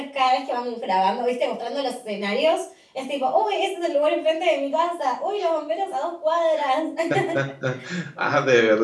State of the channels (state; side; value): identical; both; correlation 1.00